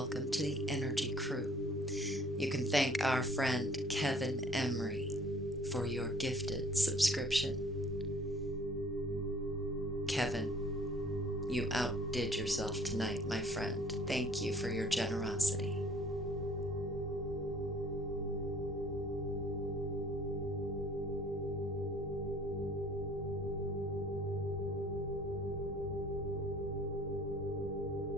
to the Energy Crew. You can thank our friend Kevin Emery for your gifted subscription. Kevin, you outdid yourself tonight, my friend. Thank you for your generosity.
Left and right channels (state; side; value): normal; both; correlation 0.54